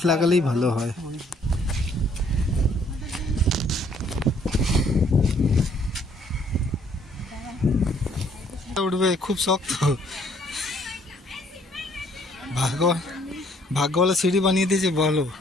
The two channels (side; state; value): both; normal; correlation 0.63